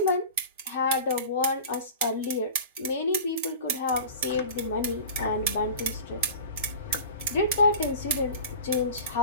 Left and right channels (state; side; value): inverted; both; correlation -0.36